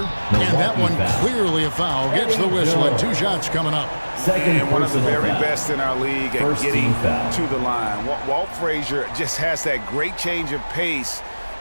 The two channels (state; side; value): inverted; both; correlation -1.00